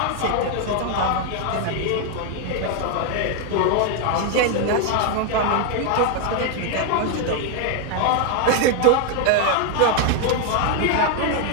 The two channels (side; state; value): both; different; correlation 0.01